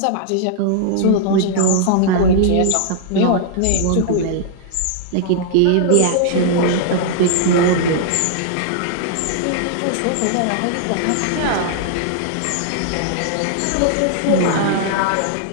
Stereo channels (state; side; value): different; both; correlation -0.01